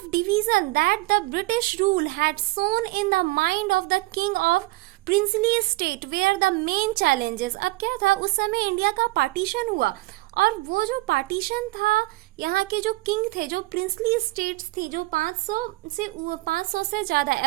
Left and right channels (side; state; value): left; quieter; 21.2 dB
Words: division that the British rule had sown in the mind of the king of princely state were the main challenges. अब क्या था, उस समय इंडिया का पार्टीशन हुआ, और वो जो पार्टीशन था, यहाँ के जो किंग थे, जो प्रिंसली स्टेट्स थी, जो 500 से ज्यादा,